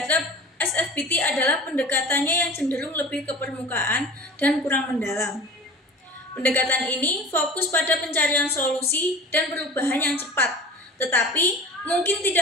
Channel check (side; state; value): both; normal; correlation 0.38